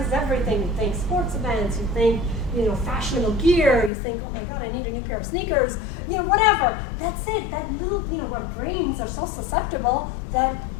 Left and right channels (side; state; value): right; drops out; at 3.9 s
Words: everything. You think sports events, you think fashionable gear, you think, oh my God, I need a new pair of sneakers, whatever. That's it. That little, our brains are so susceptible that